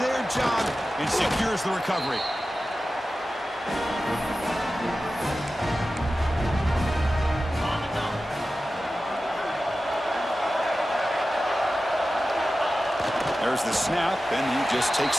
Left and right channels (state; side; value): normal; both; correlation 0.94